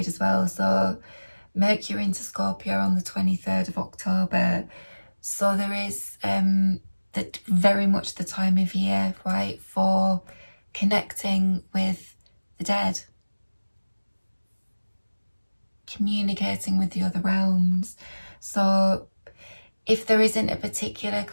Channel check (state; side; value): inverted; both; correlation -1.00